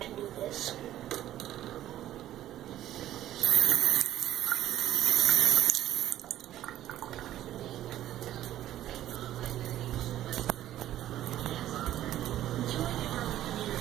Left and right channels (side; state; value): left; quieter; 12.9 dB